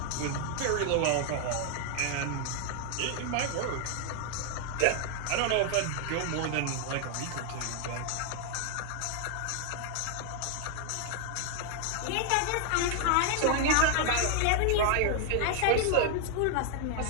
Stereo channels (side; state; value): both; different; correlation 0.00